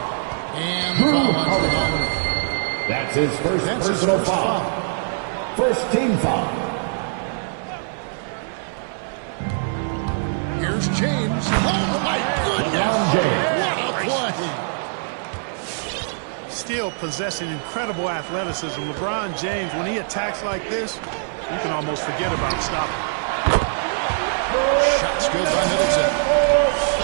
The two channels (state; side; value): silent; left; 57 dB below the other